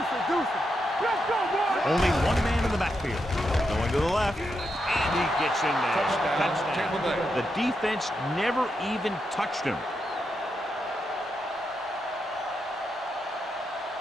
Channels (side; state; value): both; normal; correlation 0.84